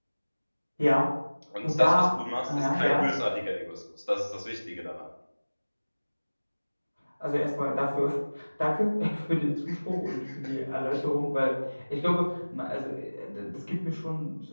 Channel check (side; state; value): both; inverted; correlation -1.00